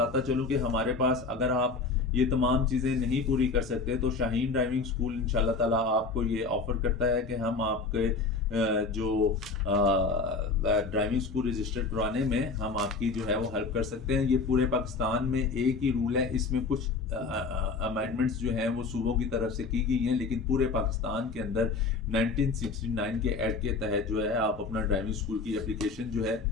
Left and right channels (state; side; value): quieter; right; 4.2 dB